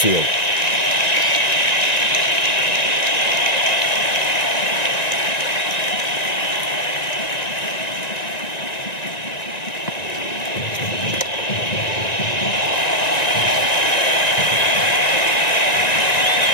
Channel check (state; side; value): late; right; 1.9 ms